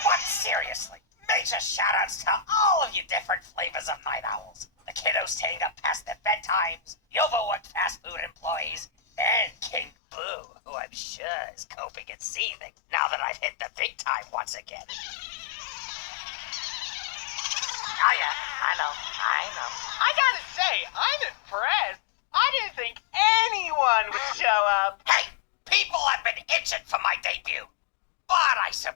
But seriously, major shoutouts to all of you different flavors of night owls. The kiddos staying up past their bedtimes, the overworked fast food employees, and King Boo, who I'm sure is coping and seething now that I've hit the big time once again. Oh yeah, I know. I gotta say, I'm impressed. I didn't think anyone would show up. Hey, people have been itching for my debut. But I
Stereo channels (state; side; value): drops out; right; at 9.9 s